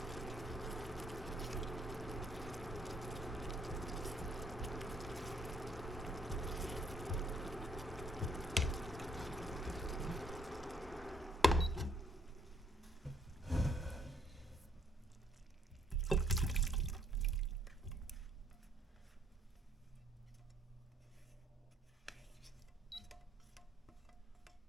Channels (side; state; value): both; normal; correlation 0.67